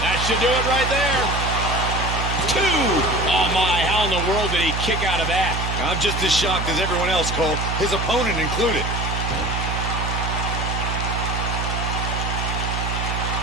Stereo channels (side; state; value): right; noise; hum, 2 dB below the sound